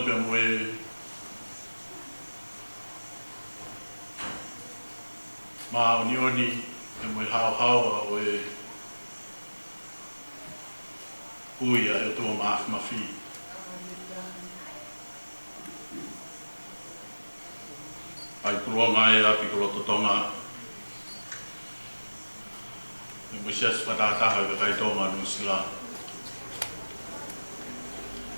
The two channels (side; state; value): both; inverted; correlation -1.00